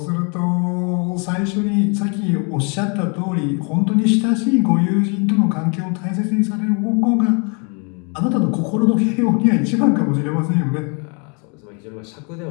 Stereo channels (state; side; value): quieter; right; 35.2 dB